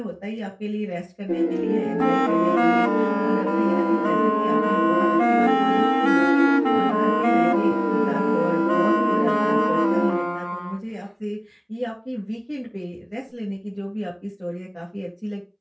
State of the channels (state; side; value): identical; both; correlation 1.00